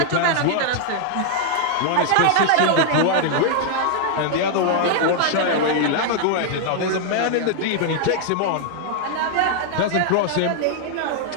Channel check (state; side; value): different; both; correlation 0.00